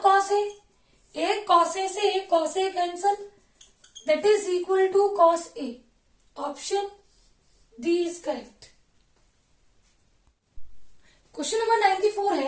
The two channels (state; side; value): identical; both; correlation 1.00